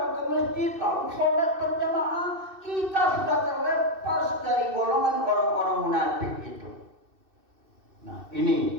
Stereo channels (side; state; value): left; late; 2.6 ms